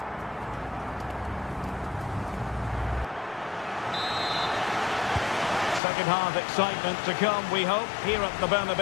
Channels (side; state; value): right; drops out; at 5.8 s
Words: Second half excitement to come, we hope, here at the